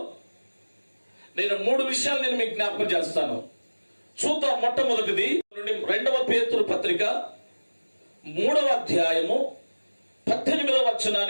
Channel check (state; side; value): inverted; both; correlation -1.00